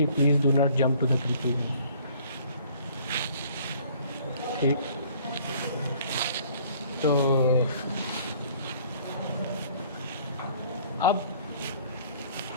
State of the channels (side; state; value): both; inverted; correlation -0.56